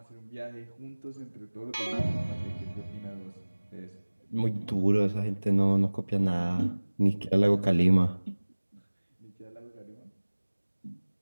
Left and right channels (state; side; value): inverted; both; correlation -1.00